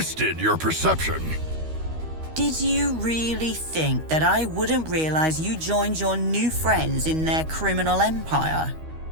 your perception. Did you really think that I wouldn't realize you joined your new friends in their criminal empire?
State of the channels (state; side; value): late; left; 13 ms